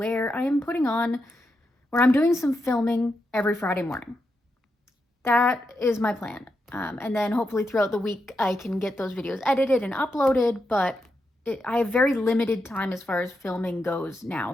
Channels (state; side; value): normal; both; correlation 0.85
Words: I'm doing some filming every Friday morning. That is my plan. And then hopefully throughout the week I can get those videos edited and uploaded, but I have very limited time as far as filming goes now